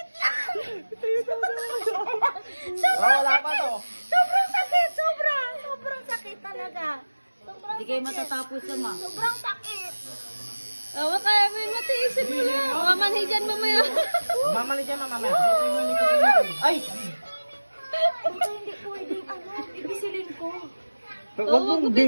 lang! Wala pa to. Sobrang sakit! Sobrang sakit talaga. Hindi kayo matatapos sama. Sobrang sakit. Awa kaya may matiisin mo na. Mamanhi dyan mamaya. Mamali dyan, mamaya. Ay! Baka hindi pwedeng ibisilin ko. Huwag mong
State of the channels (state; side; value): inverted; both; correlation -1.00